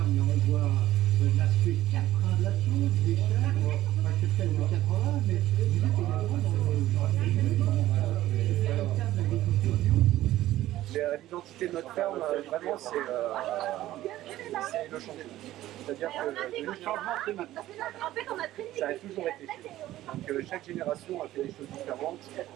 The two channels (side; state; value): left; quieter; 14.7 dB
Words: Là, on voit l'aspect caprin de la chose, des chèvres, c'est peut-être le 80, mais vous êtes également dans le cadre d'agriculture bio. L'identité de notre ferme, vraiment, c'est le changement. C'est-à-dire que Le changement, c'est maintenant. ça a toujours été. Donc chaque génération a fait des choses différentes.